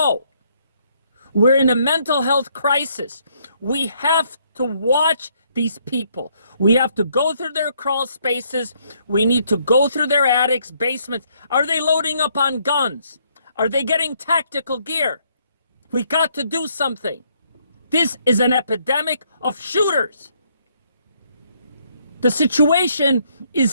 We're in a mental health crisis. We have to watch these people. We have to go through their crawl spaces. We need to go through their attics, basements. Are they loading up on guns? Are they getting tactical gear? We got to do something. This is an epidemic of shooters. The situation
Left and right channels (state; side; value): inverted; both; correlation -0.70